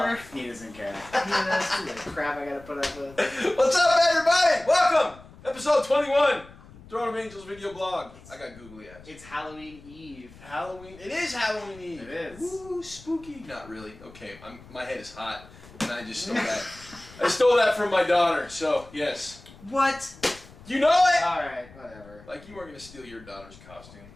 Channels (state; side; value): noise; left; rumble, 21 dB below the sound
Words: He doesn't care. That's the crap I gotta put up with. What's up, everybody? Welcome! Episode 21. Throne of Angels video blog. I got googly eyes. It's Halloween Eve. Halloween. It is Halloween Eve. It is. Ooh, spooky. Not really. Okay, my head is hot, and I just stole that. I stole that from my daughter. So yes. What? You know it. All right, whatever. Like you weren't gonna steal your daughter's costume.